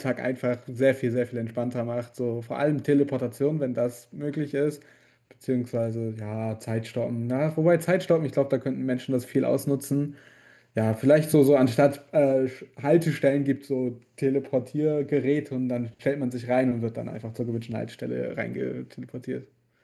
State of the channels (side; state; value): both; identical; correlation 1.00